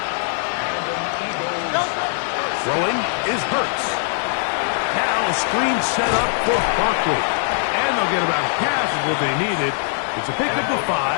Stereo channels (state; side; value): silent; right; digital silence